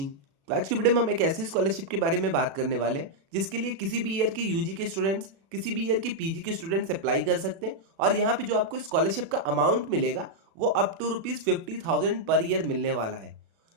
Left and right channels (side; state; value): left; late; 36 ms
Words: तो आज की video में हम एक ऐसी स्कॉलरशिप के बारे में बात करने वाले हैं जिसके लिए किसी भी ईयर के यूजी के स्टूडेंट्स, किसी भी ईयर के पीजी के स्टूडेंट्स अप्लाई कर सकते हैं। और यहाँ पे जो आपको स्कॉलरशिप का अमाउंट मिलेगा वो अप टू ₹50,000 पर ईयर मिलने वाला है।